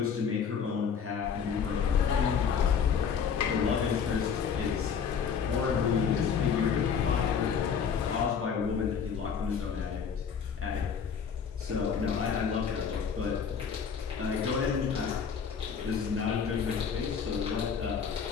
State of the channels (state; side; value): quieter; right; 6.8 dB